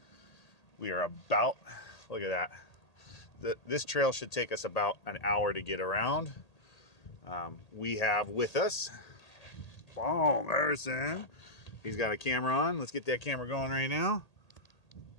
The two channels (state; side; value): late; right; 1.8 ms